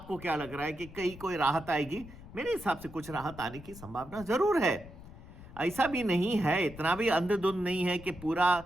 क्या लग रहा है कि कहीं कोई राहत आएगी, मेरे हिसाब से कुछ राहत आने की संभावना जरूर है। ऐसा भी नहीं है, इतना भी अंधाधुंध नहीं है कि पूरा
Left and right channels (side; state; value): left; noise; rumble, 16 dB below the sound